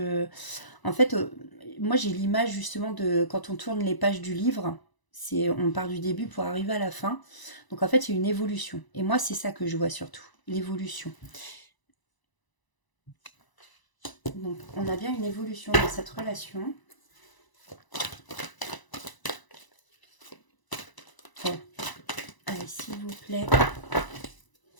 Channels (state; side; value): late; right; 1.0 ms